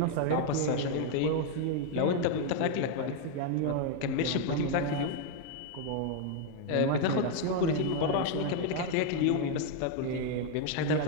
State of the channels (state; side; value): different; both; correlation 0.01